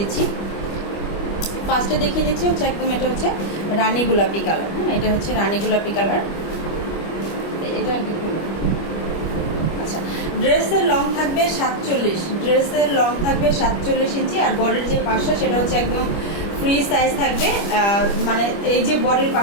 ফার্স্টে দেখিয়ে দিচ্ছি হচ্ছে একদম, এটা হচ্ছে রানী গোলাপি কালার। হ্যাঁ, এটা হচ্ছে রানী গোলাপি কালার। এটা কি খুলো। আচ্ছা, ড্রেসের লং থাকবে 47 ইঞ্চি। আর বডির যে পাশটা সেটা হচ্ছে একদম ফ্রি সাইজ থাকবে। মানে এই যে বডির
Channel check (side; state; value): right; late; 25 ms